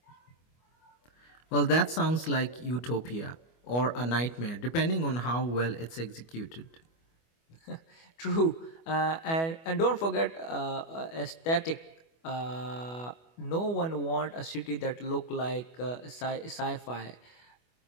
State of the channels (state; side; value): late; right; 25 ms